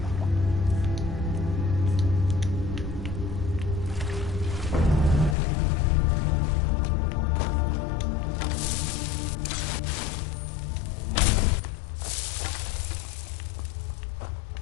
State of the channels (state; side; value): drops out; right; at 5.4 s